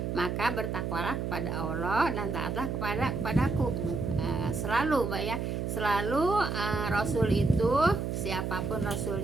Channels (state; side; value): noise; right; hum, 2 dB below the sound